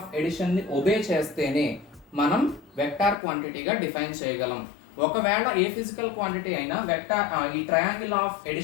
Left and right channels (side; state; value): right; drops out; at 3.2 s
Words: addition ని ఒబే చేస్తేనే మనం వెక్టార్ క్వాంటిటీగా డిఫైన్ చేయగలం. ఒకవేళ ఏ physical quantity అయినా వెక్టార్ ఈ ట్రయాంగిల్ ఆఫ్